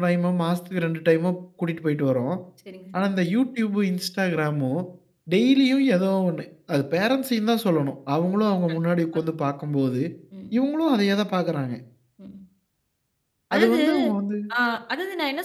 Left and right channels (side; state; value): both; identical; correlation 1.00